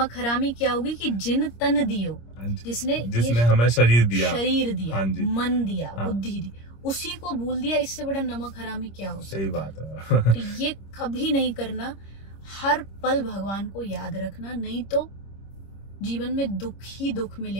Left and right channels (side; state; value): right; late; 26 ms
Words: हरामी क्या होगी कि जिन तन दियो, जिसने हमें शरीर दिया, मन दिया, बुद्धि दी, उसी को भूल दिया। इससे बड़ा नमक हरामी क्या हो सकता है? सही बात है। तो ये कभी नहीं करना। हर पल भगवान को याद रखना, नहीं तो जीवन में दुख ही दुख